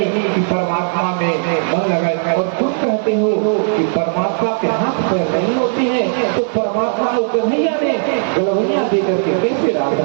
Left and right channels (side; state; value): left; silent; digital silence